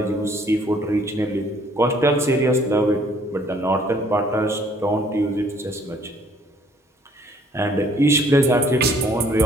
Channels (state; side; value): normal; both; correlation 0.60